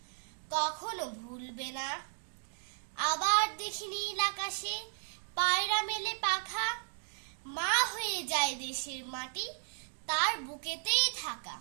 কখনো ভুলবে না। আবার দেখি নীল আকাশে পায়রা মেলে পাখা, মা হয়ে যায় দেশের মাটি তার বুকেতেই থাকা।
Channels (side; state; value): left; silent; digital silence